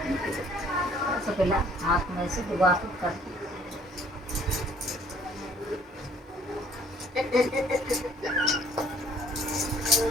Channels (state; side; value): normal; both; correlation 0.58